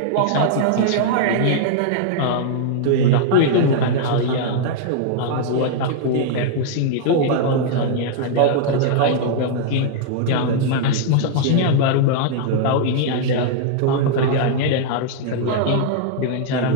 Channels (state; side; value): different; both; correlation -0.01